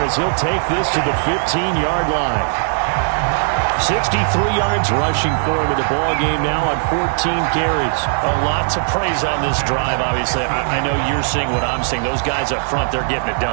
he'll take this to the 15-yard line. 63 yards rushing for him in the ball game now on 14 carries. A lot to praise on this drive, obviously. I know you're seeing what I'm seeing. Those guys up front, they're getting it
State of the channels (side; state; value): left; silent; 62 dB below the other